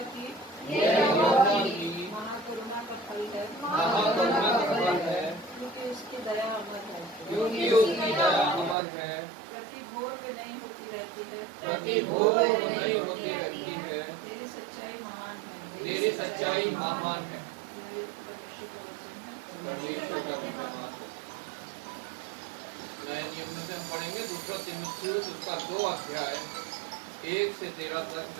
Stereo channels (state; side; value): drops out; left; at 8.8 s